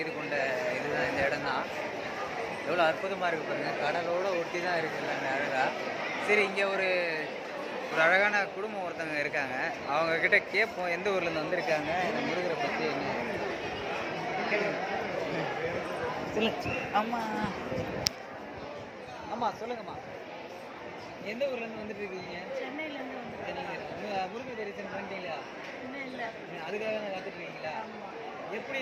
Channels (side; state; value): both; identical; correlation 1.00